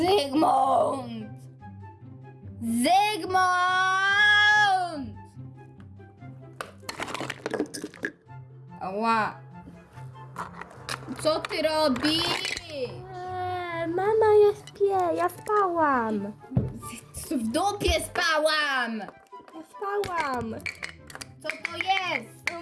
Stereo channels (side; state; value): both; identical; correlation 1.00